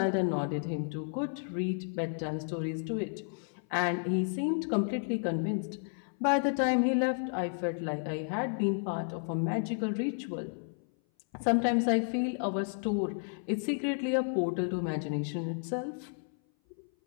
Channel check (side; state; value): right; silent; 56 dB below the other